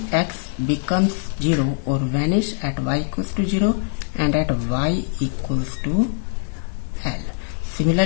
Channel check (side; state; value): right; silent; 64 dB below the other